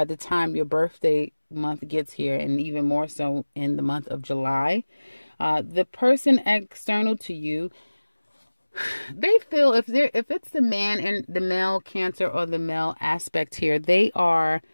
the time your birthday month gets here, and even more so in the month of July. The person external to you, they feel if it's the man and the male Cancer or the male aspect here, they are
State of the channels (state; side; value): inverted; both; correlation -1.00